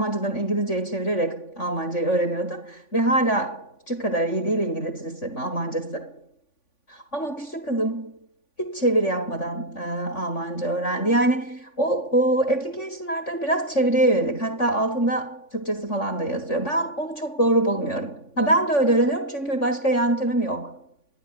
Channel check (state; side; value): late; right; 3.5 ms